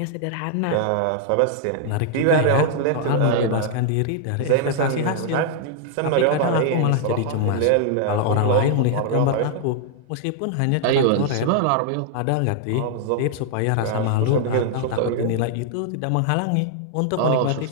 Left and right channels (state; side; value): different; both; correlation 0.00